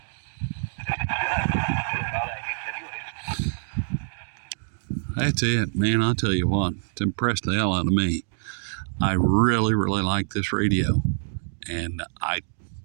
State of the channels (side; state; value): left; silent; digital silence